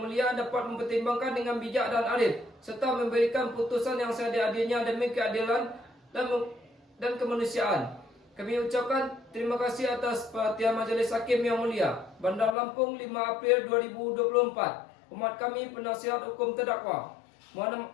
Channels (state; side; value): drops out; right; at 12.6 s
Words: dapat mempertimbangkan dengan bijak dan adil serta memberikan putusan yang seadil-adilnya demi keadilan dan kemanusiaan. Kami ucapkan terima kasih atas perhatian Majelis Hakim yang Mulia. Bandar Lampung, 5 April 2024. Hormat kami penasihat hukum terdakwa